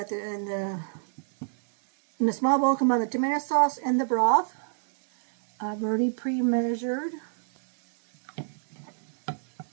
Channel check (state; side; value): silent; left; digital silence